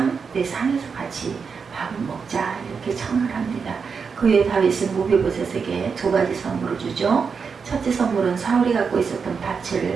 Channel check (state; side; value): quieter; left; 5.7 dB